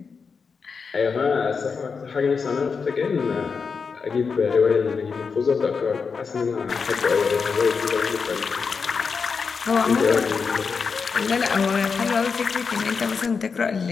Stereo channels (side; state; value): right; quieter; 5.4 dB